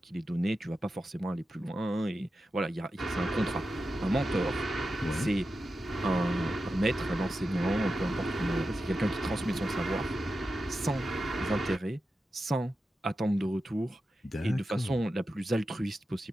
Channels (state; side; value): normal; both; correlation 0.91